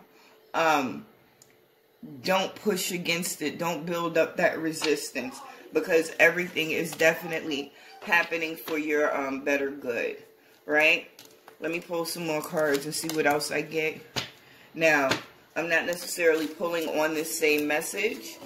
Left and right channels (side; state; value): both; identical; correlation 1.00